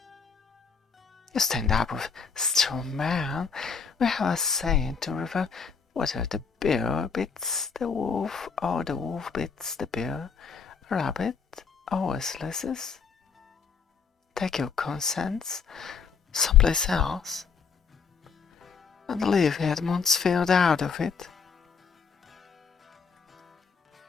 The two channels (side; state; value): right; quieter; 5.8 dB